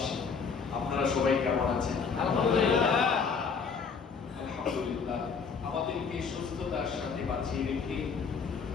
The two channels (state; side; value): quieter; right; 5.6 dB